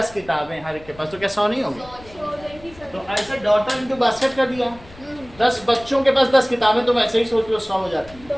किताबें, हर एक के पास, तो क्या 100 नहीं होगी? तो ऐसे डॉटर इनटू बास्केट कर दिया। 10 बच्चों के पास 10 किताबें, तुम ऐसे ही सोच लो 100 हो जाती है।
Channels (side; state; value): left; noise; rumble, 21 dB below the sound